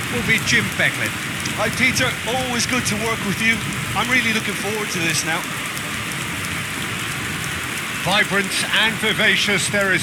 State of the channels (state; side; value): identical; both; correlation 1.00